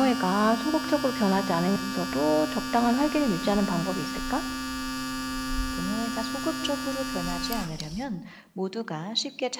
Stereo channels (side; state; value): both; identical; correlation 1.00